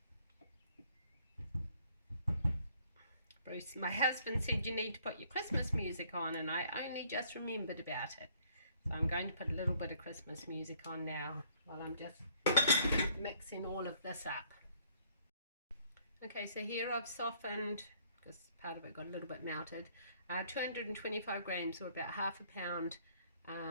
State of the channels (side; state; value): both; inverted; correlation -0.64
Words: Bruce, my husband, said you need to put your Christmas music on, and I only just remembered about it. So I'm going to put a little bit of Christmas music on now while I'm just mixing all of this up. Okay, so here I've softened, because part of it got a little bit melted, 225 grams, or about half a pound,